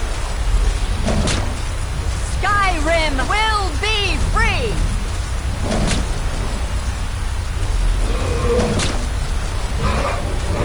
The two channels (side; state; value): left; noise; hiss, 29 dB below the sound